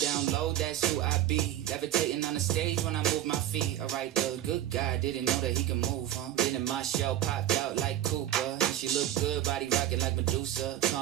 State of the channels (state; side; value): quieter; left; 12.5 dB